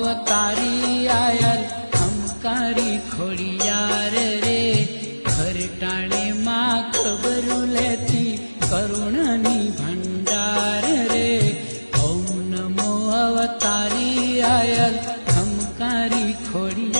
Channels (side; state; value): both; inverted; correlation -1.00